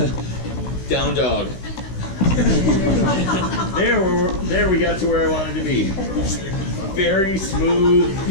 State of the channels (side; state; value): right; late; 16 ms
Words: Down dog. There we got to where I wanted to be. Very smooth,